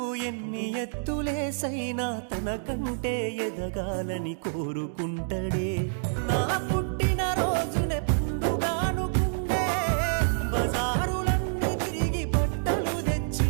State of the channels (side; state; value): left; silent; digital silence